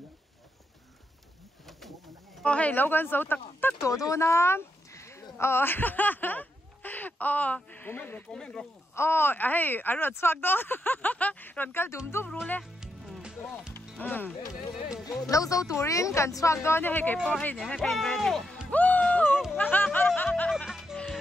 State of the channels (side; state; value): both; normal; correlation 0.82